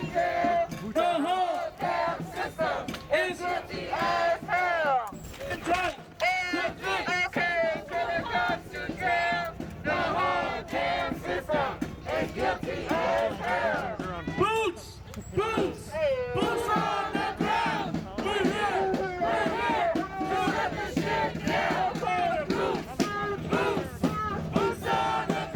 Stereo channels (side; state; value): both; identical; correlation 1.00